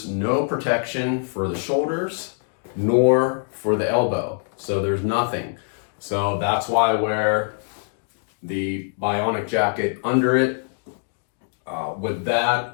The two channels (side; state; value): right; silent; digital silence